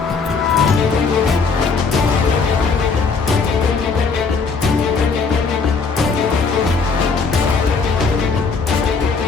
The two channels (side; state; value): right; quieter; 4.8 dB